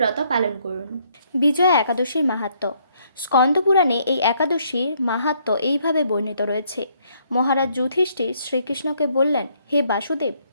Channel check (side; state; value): both; inverted; correlation -0.69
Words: পালন করুন। বিজয়া একাদশীর মাহাত্ম্য। স্কন্দপুরাণে এই একাদশীর মাহাত্ম্য এইভাবে বর্ণিত রয়েছে। মহারাজ যুধিষ্ঠির শ্রীকৃষ্ণকে বললেন, হে বাসুদেব,